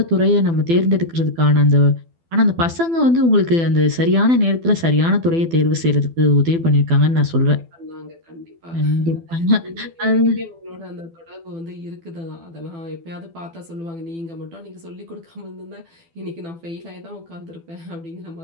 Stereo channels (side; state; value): left; late; 12 ms